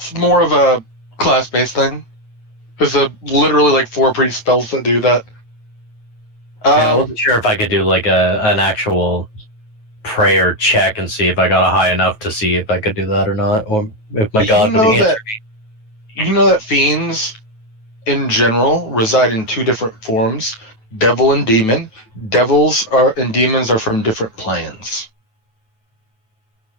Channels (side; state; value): right; late; 9.2 ms